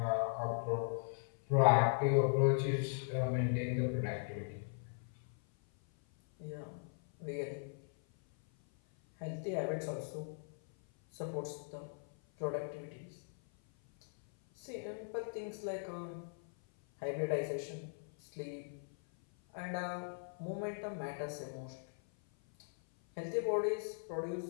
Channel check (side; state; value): right; silent; 52 dB below the other